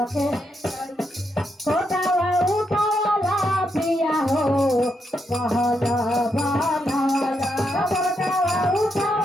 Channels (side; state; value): both; normal; correlation 0.81